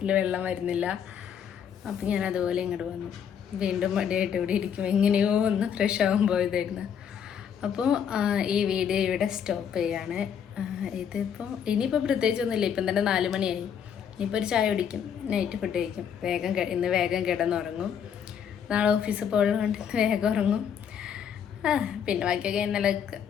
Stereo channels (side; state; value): right; quieter; 8.1 dB